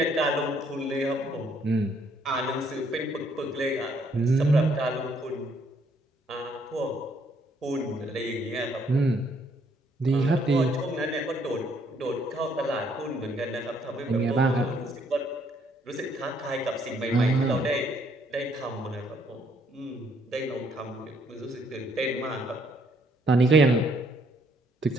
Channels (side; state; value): both; normal; correlation 0.68